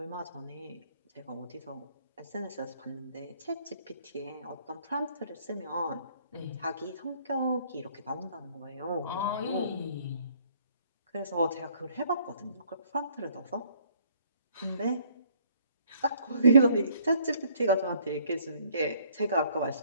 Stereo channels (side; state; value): both; inverted; correlation -0.63